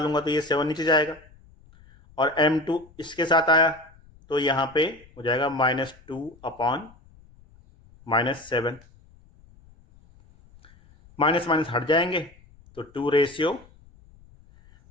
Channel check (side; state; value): left; noise; rumble, 27 dB below the sound